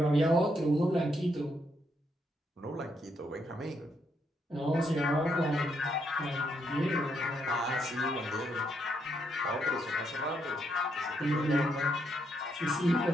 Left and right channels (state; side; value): normal; both; correlation 0.77